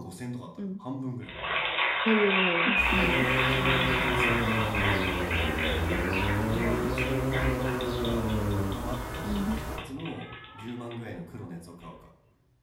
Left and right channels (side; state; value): both; identical; correlation 1.00